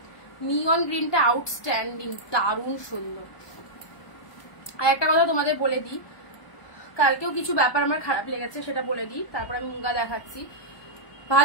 নিয়ন গ্রিনটা আউটস্ট্যান্ডিং, দারুণ সুন্দর। আর একটা কথা তোমাদের বলে দিই, কালকেও কিছু ব্যাপার আমার খারাপ লেগেছে, সেটা বলে দিই, তারপর আমি মুগা দেখাচ্ছি।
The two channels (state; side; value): late; right; 1.2 ms